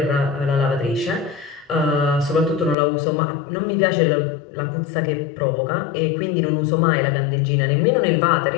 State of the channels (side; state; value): right; drops out; at 2.8 s